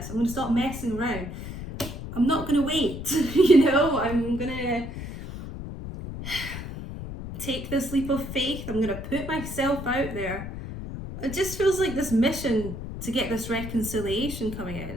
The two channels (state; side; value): noise; left; rumble, 8 dB below the sound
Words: I'm going to stop messing around. I'm not going to wait. You know, I'm going to take this leap of faith. I'm going to put myself out there. It just feels like this mission to get this reconciliation coming in.